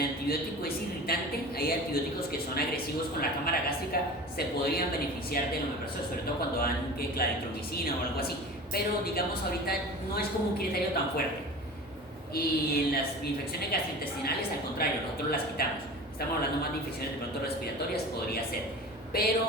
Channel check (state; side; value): normal; both; correlation 0.36